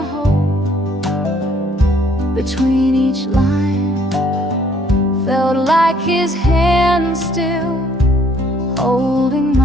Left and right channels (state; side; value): normal; both; correlation 0.62